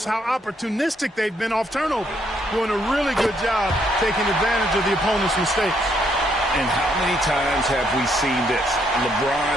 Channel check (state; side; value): normal; both; correlation 0.72